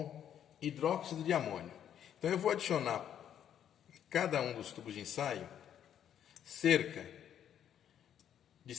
hidróxido de amônio. Então eu vou adicionar em cada um dos tubos de ensaio cerca de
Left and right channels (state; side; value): quieter; right; 9.7 dB